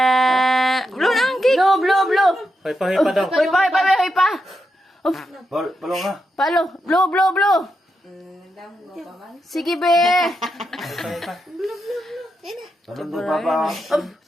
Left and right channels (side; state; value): both; normal; correlation 0.85